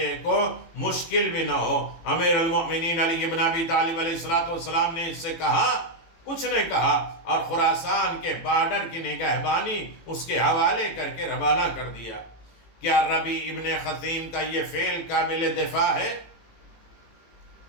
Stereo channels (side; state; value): right; late; 18 ms